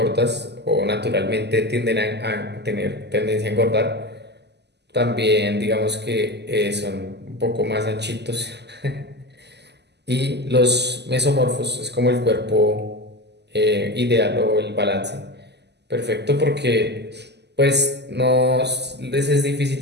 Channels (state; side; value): late; left; 0.50 ms